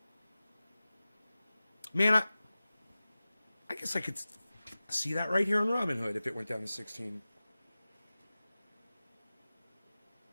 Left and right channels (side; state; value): both; inverted; correlation -0.96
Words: Man, I guess I could see that right here on Robinhood if it went down to 16.